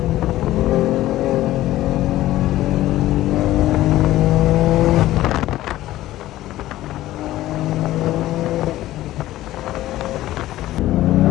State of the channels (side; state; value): right; quieter; 15.2 dB